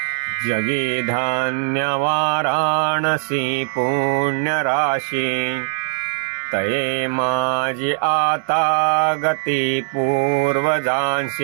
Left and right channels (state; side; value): silent; left; digital silence